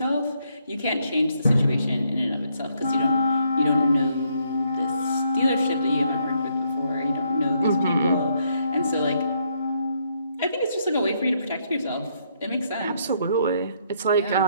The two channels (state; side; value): inverted; both; correlation -0.73